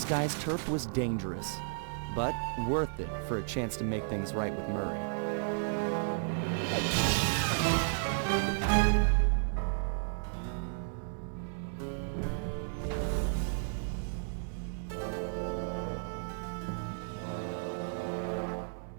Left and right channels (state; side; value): silent; left; 56 dB below the other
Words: guy's turf was dangerous, but worth it for a chance to make things right with Murray.